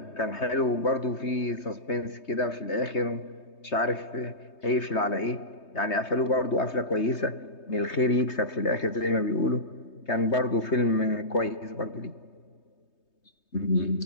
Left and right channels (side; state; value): right; late; 3.2 ms